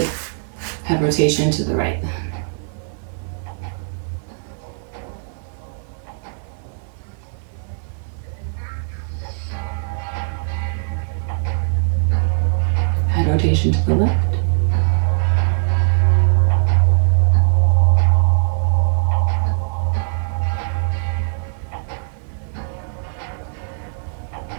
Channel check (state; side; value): silent; left; digital silence